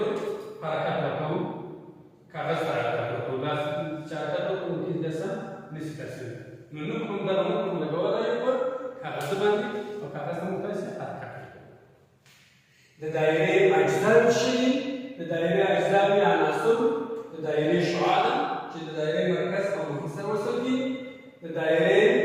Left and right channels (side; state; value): both; identical; correlation 1.00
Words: حرکت ورکوو کاغذ ته حرکت ورکوو لاس چې حرکت وکړو ممکن داسې نشي ترسره نو نوک موږ دغه نوک موږ لګولی یو په کاغذ باندې او کاغذ ته موږ تاسې حرکت ورکوو. د دایرې اجزا څه دي؟ د دایرې اجزا یا عناصر د دایرې شعاع ده چې د دایرې مرکز او محیط سره وصل دي. د دایرې